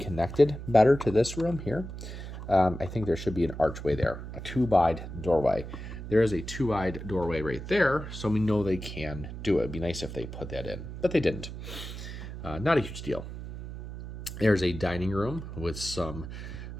better to this room here. I think there should be an archway there, a 2-wide doorway. There is a 2-wide doorway right there, so we know they can do it. It'd be nice if they put that in, but they didn't. Not a huge deal. There's a dining room with some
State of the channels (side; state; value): right; noise; hum, 9 dB below the sound